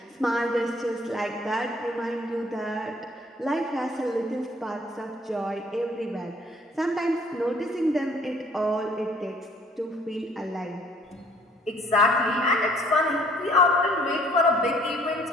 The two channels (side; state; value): both; normal; correlation 0.59